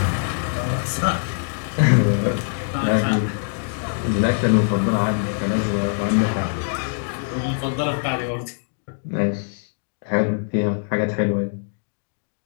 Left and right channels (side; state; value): right; silent; digital silence